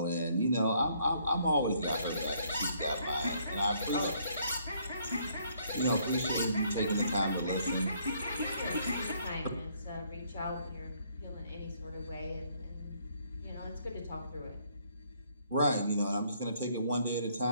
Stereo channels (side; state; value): both; inverted; correlation -0.67